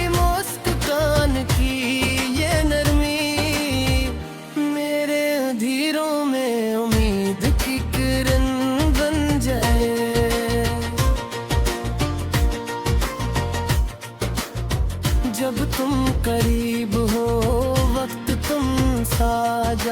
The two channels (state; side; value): identical; both; correlation 1.00